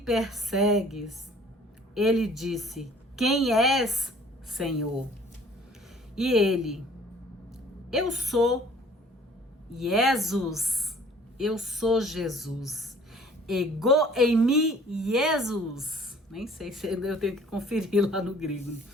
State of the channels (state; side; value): normal; both; correlation 0.53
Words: Ele disse: Quem és, Senhor? E ele: Eu sou Jesus. Eu sou Jesus. Ego em mim, Jesus. Nem sei se eu tenho que conferir lá no grego.